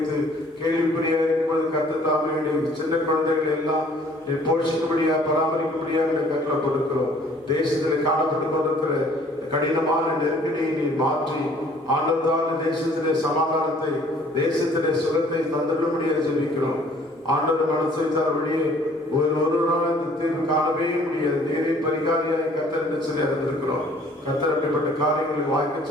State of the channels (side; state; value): both; normal; correlation 0.56